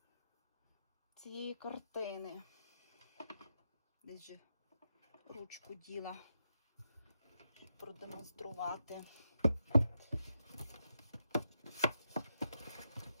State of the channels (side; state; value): both; inverted; correlation -0.85